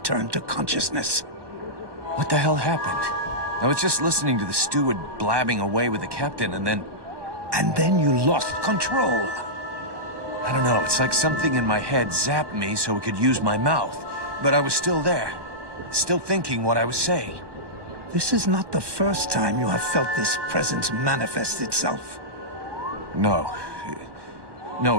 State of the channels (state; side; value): late; left; 1.2 ms